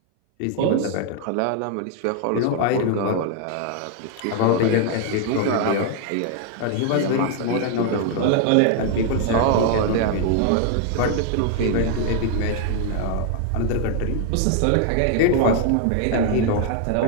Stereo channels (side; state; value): both; different; correlation 0.00